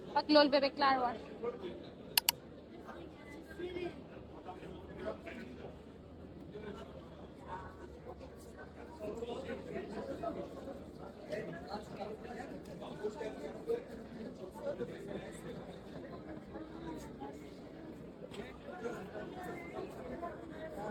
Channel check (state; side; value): identical; both; correlation 1.00